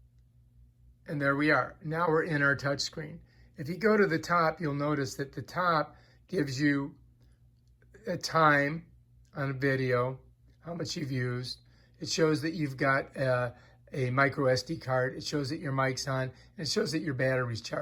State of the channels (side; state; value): both; identical; correlation 1.00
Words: And there we are. Now we're in our touch screen. If you go to the top, you'll notice that the top gives you a time on a video, how much you've used. It shows that you've got a micro SD card. It shows that your mic's on, and it shows that your battery's